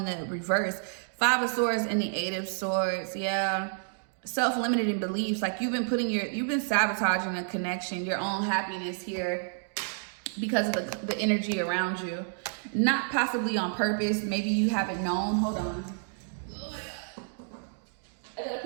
the reverse. 5 of Swords and the 8 of Swords. Yeah. Self-limiting beliefs. Like you've been sabotaging a connection, your own happiness here because of the energy around you. Not possibly on purpose. Maybe you haven't known. Hold on. Oh my God. I gotta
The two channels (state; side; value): silent; left; digital silence